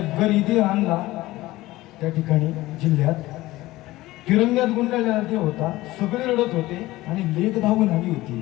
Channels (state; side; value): quieter; right; 17.9 dB